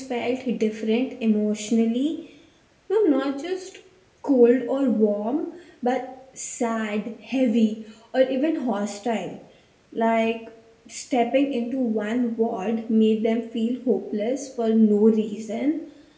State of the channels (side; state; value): both; identical; correlation 1.00